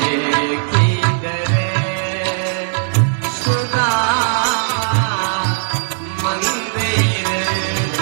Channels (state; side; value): silent; left; 68 dB below the other